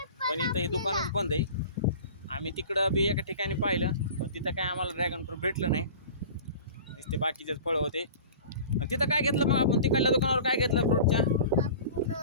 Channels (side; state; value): both; inverted; correlation -0.39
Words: पण इथं हे दुकानच बंद आहे. आम्ही तिकडं बी एका ठिकाणी पाहिलं, पण तिथं काय आम्हाला ड्रॅगन फ्रूट भेटलं नाही. नुसते बाकीचेच फळं होते. तिथं काय घेतलं मग आपण? तिकडल्या दुकानावर काय घेतलं फ्रूटच्या?